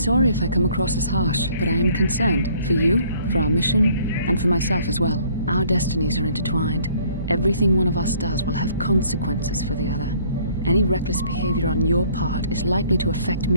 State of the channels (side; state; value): both; inverted; correlation -0.59